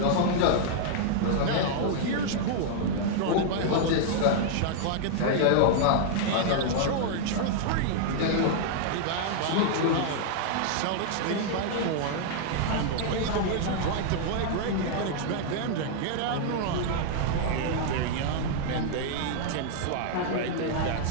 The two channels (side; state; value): both; different; correlation -0.01